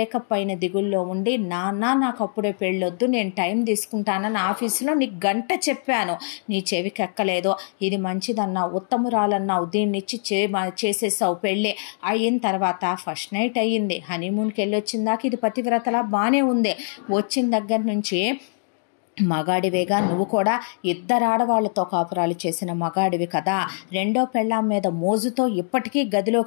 అయిన దిగుల్లో ఉండి, నాన్న నాకు అప్పుడే పెళ్ళొద్దు, నేను టైం తీసుకుంటానని ఆఫీసులో నీకు గంట చెప్పాను, నీ చెవికి ఎక్కలేదు. ఇది మంచిదన్నావు, ఉత్తమురాలన్నావు, దీన్నిచ్చి చేసేసావు పెళ్ళి. అయిన తర్వాత ఫస్ట్ నైట్ అయ్యింది, హనీమూన్కి వెళ్ళొచ్చిందాక ఇది పతివ్రతలా బాగానే ఉంది. వచ్చిన దగ్గర నుంచి మగాడివేగా నువ్వు కూడా, ఇద్దరు ఆడవాళ్లతో కాపురాలు చేసిన మగాడివి కదా, రెండో పెళ్ళాం మీద మోజుతో ఇప్పటికీ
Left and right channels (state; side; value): silent; right; digital silence